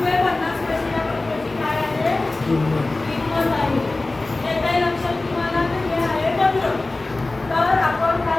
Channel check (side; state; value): right; quieter; 3.1 dB